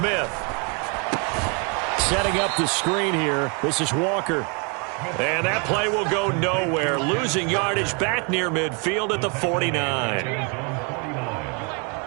Setting up the screen here. This is Walker. And that play will go nowhere. Losing yardage back near midfield at the 49.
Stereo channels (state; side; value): quieter; left; 34.2 dB